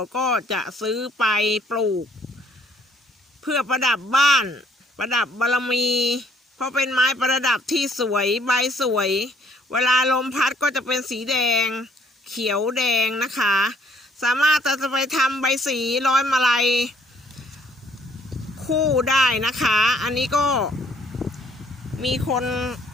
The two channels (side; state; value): both; normal; correlation 0.63